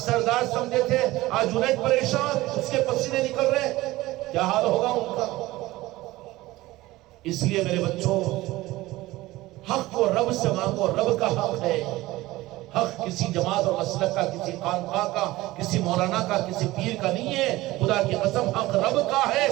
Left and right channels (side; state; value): left; quieter; 18.3 dB